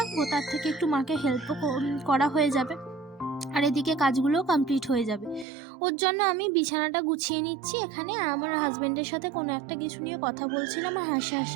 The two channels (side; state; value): left; drops out; at 5.5 s